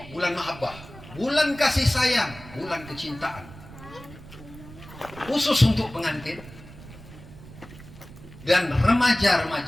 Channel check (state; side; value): noise; right; rumble, 17 dB below the sound